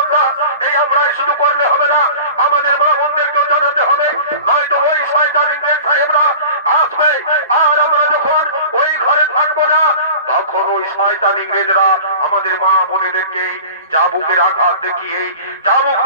এই আমরাই শুধু করলে হবে না, আমাদের মা বোনদেরকেও জানাতে হবে, নয়তো ওই শয়তান ইংরেজ সাহেবরা আসবে। আর আমরা যখন ওই ঘরে থাকবো না তখন ওই শয়তান ইংরেজরা আমাদের মা বোনেদেরকে চাবুকের আঘাত দেখিয়ে, চাবুক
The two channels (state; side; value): inverted; both; correlation -0.38